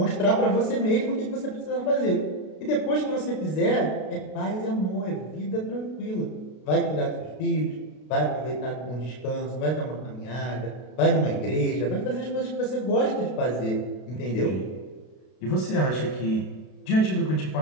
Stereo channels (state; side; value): late; right; 32 ms